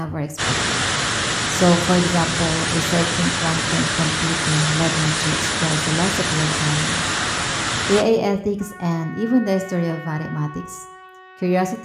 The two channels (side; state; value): both; identical; correlation 1.00